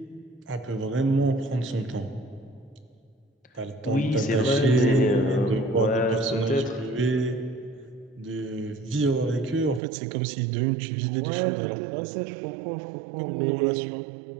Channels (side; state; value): left; drops out; at 9.8 s